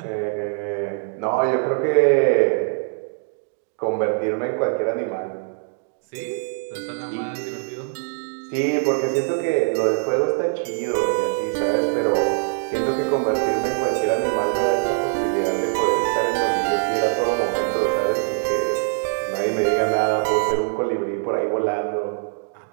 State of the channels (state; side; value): silent; left; 63 dB below the other